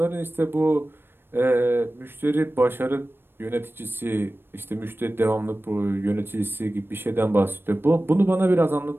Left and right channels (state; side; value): late; left; 0.10 ms